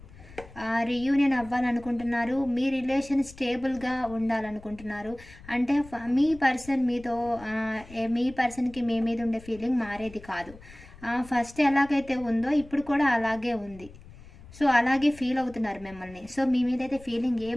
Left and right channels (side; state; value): left; noise; rumble, 20 dB below the sound